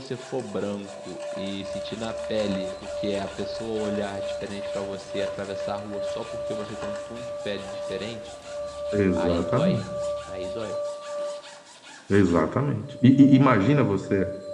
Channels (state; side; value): identical; both; correlation 1.00